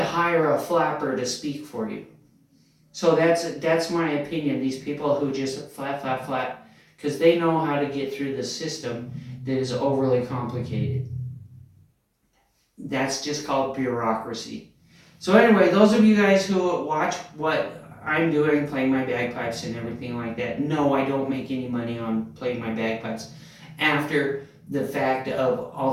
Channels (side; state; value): both; identical; correlation 1.00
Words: hire a flapper to speak for you. So that's my opinion. These people who just flap, because they know how to get through the system that is overly complicated. That's just called bureaucracy. So anyway, those of you guys who watch what I'm doing, playing my bagpipes and everything like that, no, I don't make any money on playing my bagpipes. After the fact of